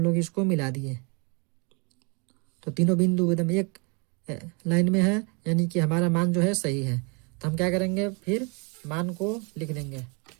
इसको मिला दिए, तो तीनों बिंदु एकदम एक लाइन में है, यानी कि हमारा मान जो है सही है। तो हम क्या करेंगे, फिर मान को लिख देंगे।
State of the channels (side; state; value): left; quieter; 33.4 dB